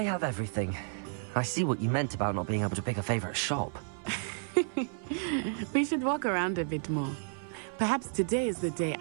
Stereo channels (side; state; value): left; silent; 57 dB below the other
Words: have everything. I see what you meant about not being able to pick a favorite shop. We should walk around a bit more. Perhaps today is the day